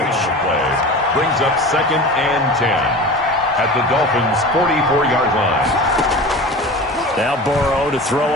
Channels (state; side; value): normal; both; correlation 0.34